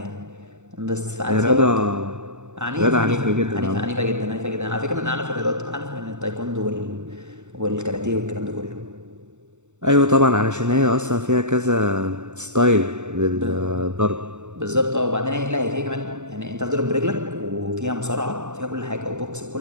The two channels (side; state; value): left; late; 0.84 ms